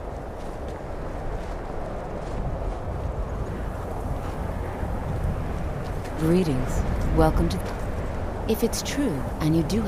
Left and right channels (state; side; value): identical; both; correlation 1.00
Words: Greetings. Welcome to... If it's true, and you do